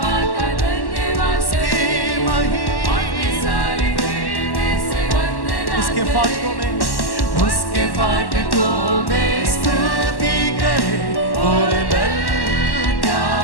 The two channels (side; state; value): right; late; 1.1 ms